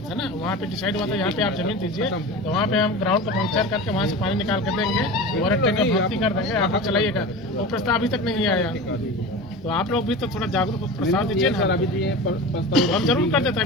था ना, वहाँ पे डिसाइड हुआ था यहाँ पे आप जमीन दीजिए, तो वहाँ पे हम ग्राउंड का पंक्चर करके वहाँ से पानी निकाल कर देंगे और टैंक का भर्ती कर देंगे, आप लोग चलाइएगा। वो प्रस्ताव अभी तक नहीं आया, तो आप लोग भी तो थोड़ा जागरूक हो, प्रस्ताव दीजिए ना। अभी हम जरूर कर देते,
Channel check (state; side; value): normal; both; correlation 0.31